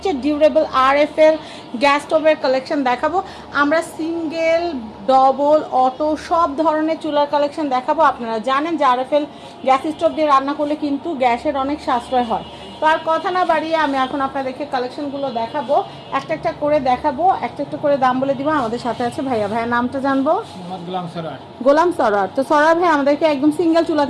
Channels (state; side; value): identical; both; correlation 1.00